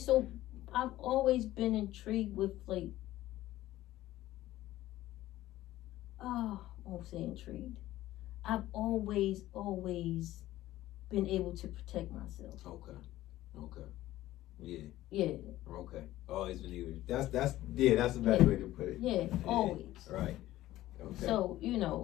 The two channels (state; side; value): quieter; right; 15.3 dB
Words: I've always been intrigued with, like, I won't say intrigued. I've always been able to protect myself. Okay. Yeah. Yeah. Okay. Always been able. That's the best way to put it. Yeah, always. Right. Okay. So, you